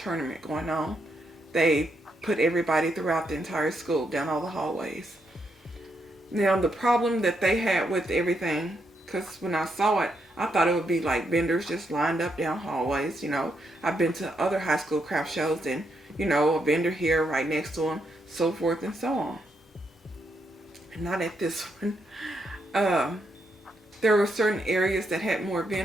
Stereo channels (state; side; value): normal; both; correlation 0.79